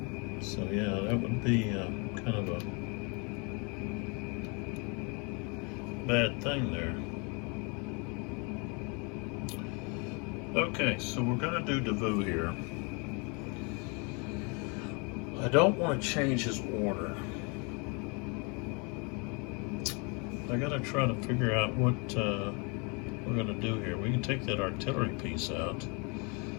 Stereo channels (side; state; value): right; quieter; 32.5 dB